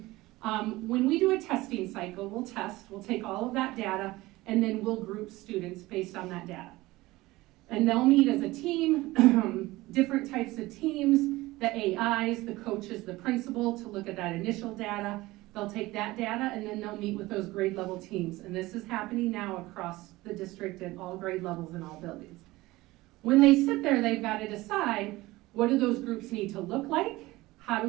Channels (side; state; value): left; quieter; 19.3 dB